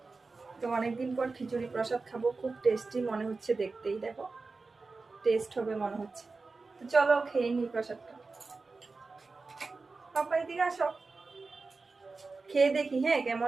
তো অনেকদিন পর খিচুড়ি প্রসাদ খাবো, খুব টেস্টি মনে হচ্ছে, দেখতেই দেখো টেস্ট হবে মনে হচ্ছে। তো চলো খেয়ে নি প্রসাদটা। পাপা এদিকে আসো, খেয়ে দেখি হ্যাঁ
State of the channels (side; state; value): left; quieter; 4.0 dB